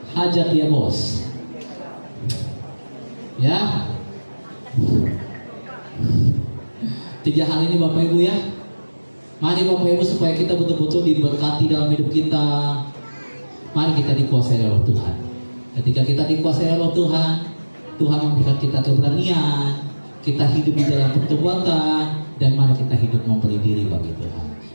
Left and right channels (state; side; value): inverted; both; correlation -1.00